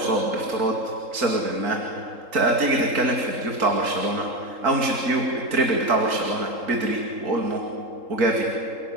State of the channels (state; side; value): late; left; 3.8 ms